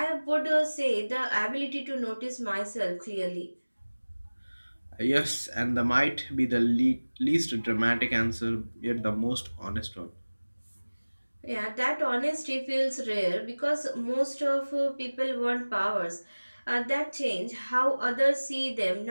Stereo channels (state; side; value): inverted; both; correlation -1.00